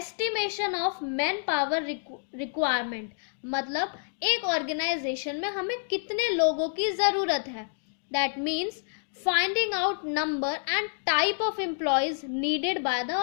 of man power requirement. मतलब एक ऑर्गेनाइजेशन में हमें कितने लोगों की ज़रूरत है। That means finding out number and type of employees needed by the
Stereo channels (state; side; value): silent; right; digital silence